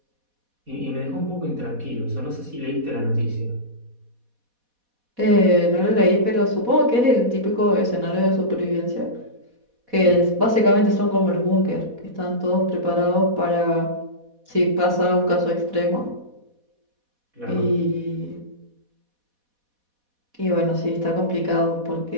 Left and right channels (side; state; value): left; late; 4.1 ms